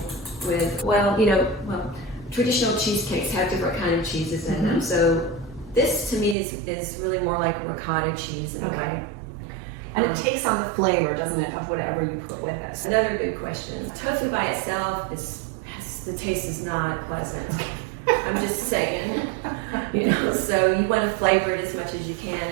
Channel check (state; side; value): drops out; left; at 6.4 s